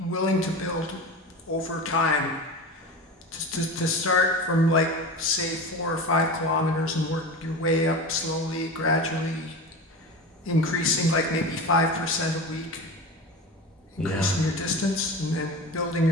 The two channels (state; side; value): normal; both; correlation 0.29